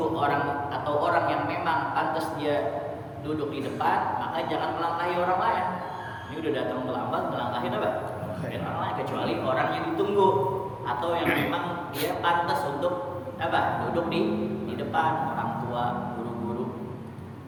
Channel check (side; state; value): both; identical; correlation 1.00